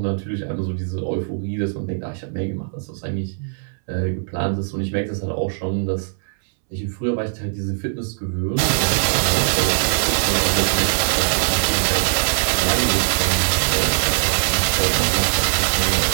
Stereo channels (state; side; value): silent; left; 65 dB below the other